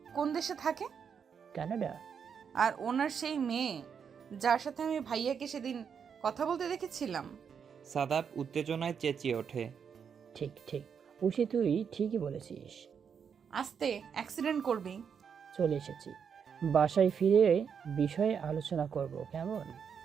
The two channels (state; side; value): quieter; left; 7.0 dB